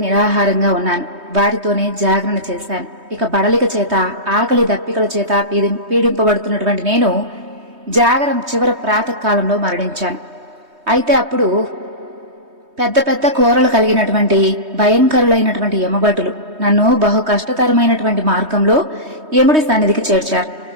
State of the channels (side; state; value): left; late; 3.2 ms